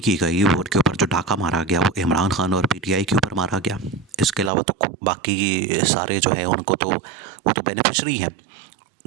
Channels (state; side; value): drops out; left; at 4.5 s